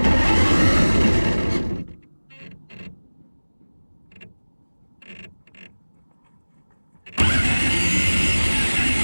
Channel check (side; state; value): both; inverted; correlation -1.00